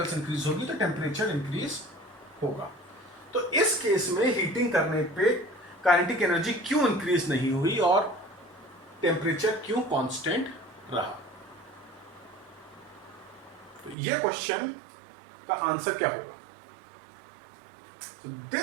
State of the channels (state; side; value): drops out; left; at 14.0 s